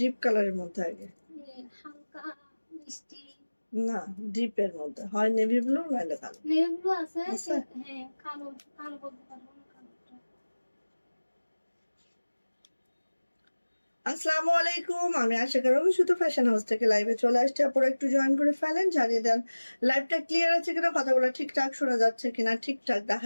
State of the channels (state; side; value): inverted; both; correlation -1.00